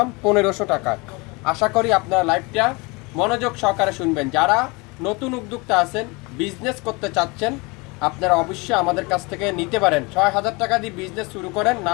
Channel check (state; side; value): quieter; right; 26.9 dB